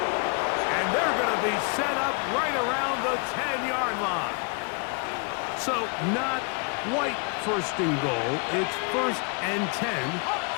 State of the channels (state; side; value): quieter; right; 35.2 dB